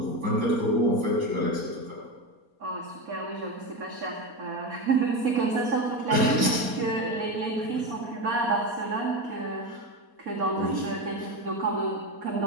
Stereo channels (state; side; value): late; left; 4.2 ms